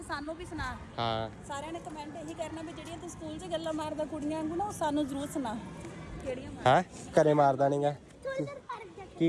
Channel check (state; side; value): identical; both; correlation 1.00